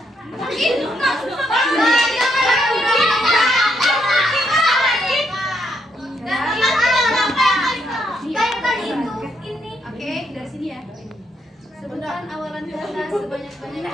Oke, dari sini ya. Sebutkan awalan kata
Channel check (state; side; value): normal; both; correlation 0.76